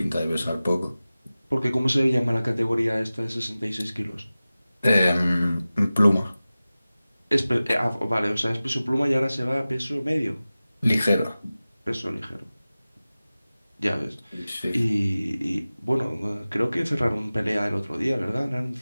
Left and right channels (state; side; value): inverted; both; correlation -0.97